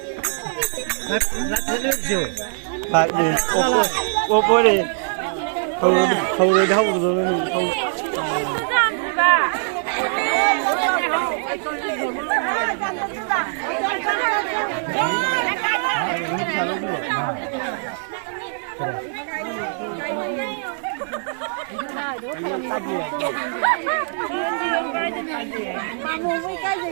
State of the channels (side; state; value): left; silent; digital silence